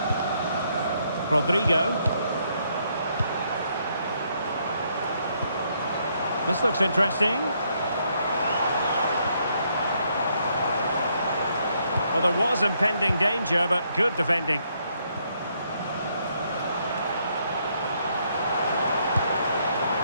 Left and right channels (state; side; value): inverted; both; correlation -0.73